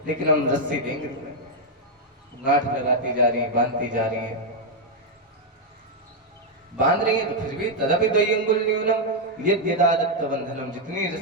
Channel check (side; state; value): both; normal; correlation 0.00